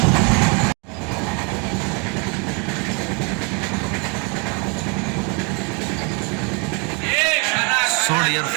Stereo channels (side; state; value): left; quieter; 33.4 dB